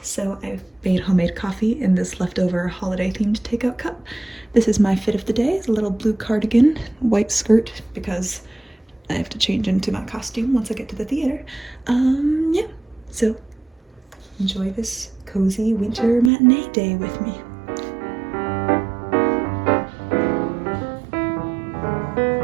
So I've made homemade coffee in this leftover holiday-themed takeout cup. This is my fit of the day. It's a little blue cardigan, white skirt, because I have to change into my costume once I get to the theater. Yeah, so enjoy this cozy winter matinee day with me.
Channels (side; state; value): left; drops out; at 16.3 s